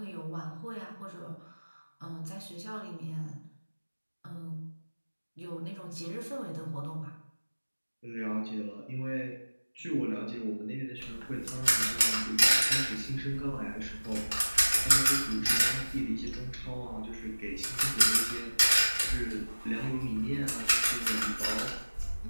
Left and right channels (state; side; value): inverted; both; correlation -1.00